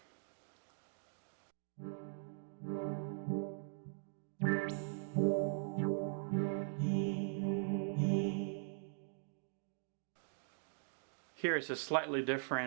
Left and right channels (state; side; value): silent; left; digital silence